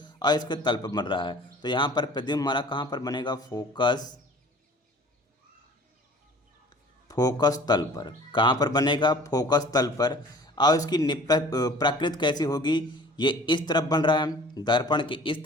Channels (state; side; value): normal; both; correlation 0.48